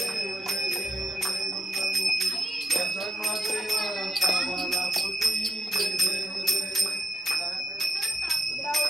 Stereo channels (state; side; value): normal; both; correlation 0.84